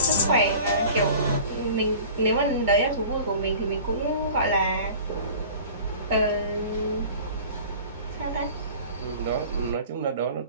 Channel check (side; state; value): both; inverted; correlation -0.43